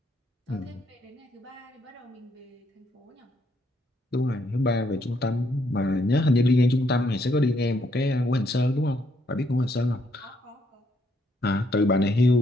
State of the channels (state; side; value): normal; both; correlation 0.73